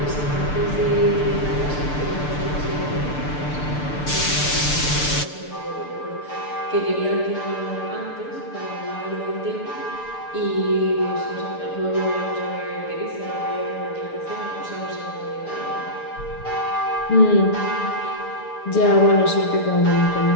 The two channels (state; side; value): late; right; 6.8 ms